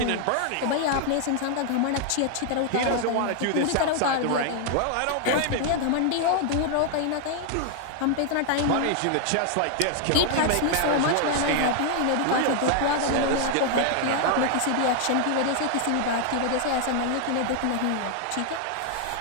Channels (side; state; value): both; different; correlation 0.00